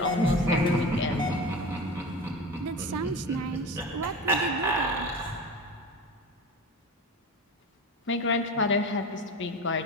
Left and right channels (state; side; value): normal; both; correlation 0.29